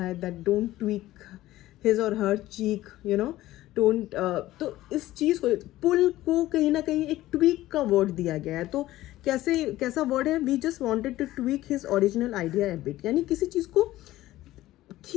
दैट डोंट ट्वीक हिज और हर चीक, यू नो, डोंट। तो इस चीज़ को, पुल को कहीं ना कहीं एक ट्वीक का वर्ड दिया गया है। तो कैसा वर्ड है? We just wanted to tweak his original idea a bit, यानी किसी चीज़ को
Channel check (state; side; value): quieter; right; 15.8 dB